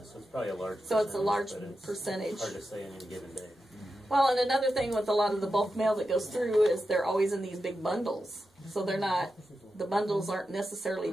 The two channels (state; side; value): normal; both; correlation 0.89